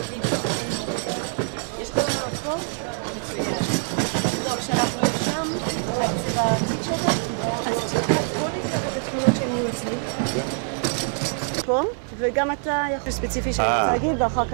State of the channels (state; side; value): silent; left; 56 dB below the other